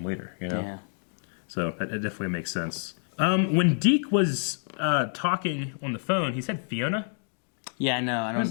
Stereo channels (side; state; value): right; silent; digital silence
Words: leader, Yeah. So it definitely makes sense. When Deke was talking on the phone, he said Fiona? Yeah, I know. What is